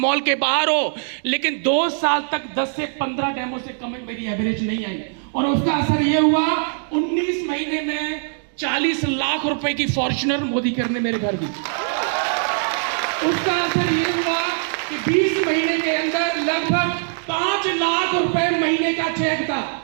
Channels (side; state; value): left; silent; digital silence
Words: के बाहर हो, लेकिन 2 साल तक 10 से 15 डेमो से कम मेरी एवरेज नहीं आई। और उसका असर ये हुआ, 19 महीने में 40 लाख रुपए की फॉर्च्यूनर मोदी करने मेरे घर दी। उसका असर ये हुआ कि 20 महीने के अंदर लगभग 5 लाख रुपए महीने का चेक था,